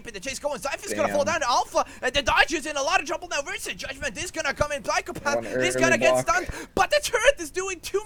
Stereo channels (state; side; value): identical; both; correlation 1.00